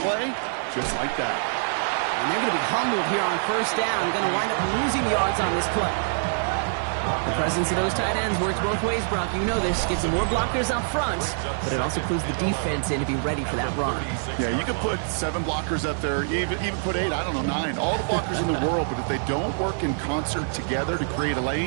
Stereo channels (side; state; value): left; silent; 58 dB below the other